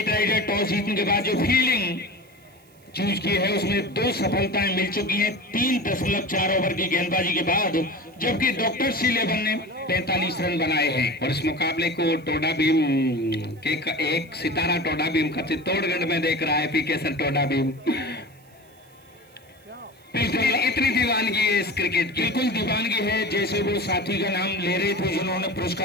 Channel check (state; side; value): noise; right; hiss, 30 dB below the sound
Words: राइडर टॉस जीतने के बाद जो फील्डिंग चूज की है उसमें 2 सफलताएं मिल चुकी हैं 3.4 ओवर की गेंदबाजी के बाद, जबकि डॉक्टर C11 ने 45 रन बनाए हैं। और इस मुकाबले को टोडा भीम के एक सितारा टोडा भीम का चित्तौड़गढ़ में देख रहा है, पीके सर टोडा भीम। इतनी दीवानगी है इस क्रिकेट की, बिल्कुल दीवानगी है। जैसे वो साथी का नाम ले रहे थे जिन्होंने